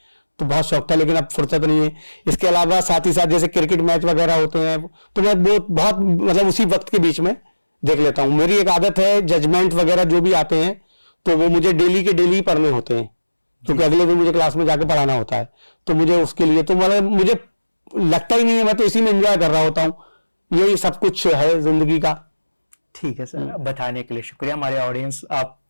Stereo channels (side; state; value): both; inverted; correlation -1.00